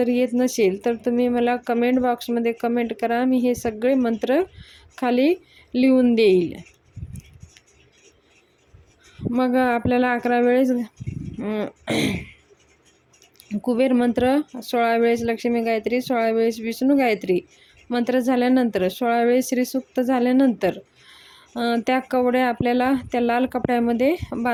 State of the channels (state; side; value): identical; both; correlation 1.00